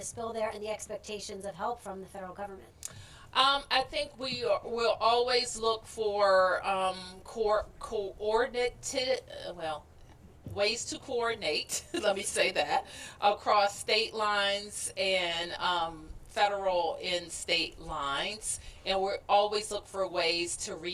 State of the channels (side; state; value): both; identical; correlation 1.00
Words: spill there and the expectations of help from the federal government? I think we will always look for coordinated, ways to coordinate, let me say that, across state lines and federal and state lines. And we always look for ways to